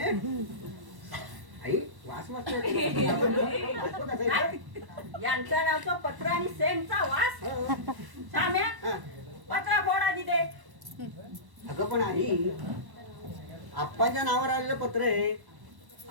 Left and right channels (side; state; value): left; late; 1.1 ms